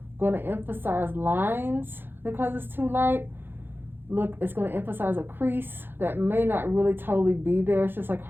going to emphasize lines because it's too light. Look, it's going to emphasize a crease that may not really totally be there. It's just like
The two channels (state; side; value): late; left; 0.10 ms